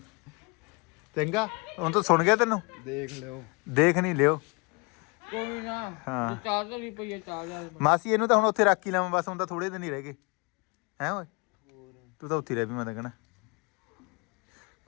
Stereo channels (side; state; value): right; quieter; 30.1 dB